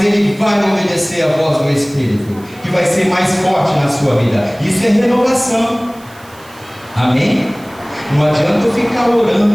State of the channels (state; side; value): noise; right; hiss, 25 dB below the sound